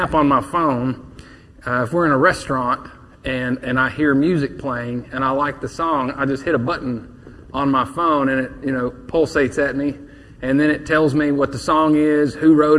on my phone. If we're in a restaurant and I hear music playing and I like the song, I just hit a button on my phone and it pulsates at me, and then it tells me what the song is, who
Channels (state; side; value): identical; both; correlation 1.00